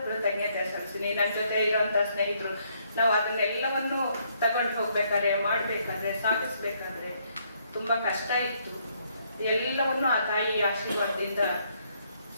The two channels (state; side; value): inverted; both; correlation -0.70